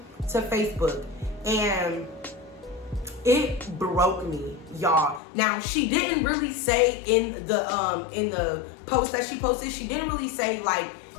to Facebook. And it broke me, y'all. Now, she didn't really say in the post that she posted, she didn't really say like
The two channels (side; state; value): right; drops out; at 5.2 s